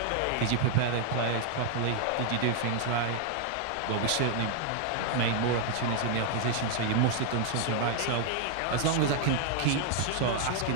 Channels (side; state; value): both; different; correlation 0.00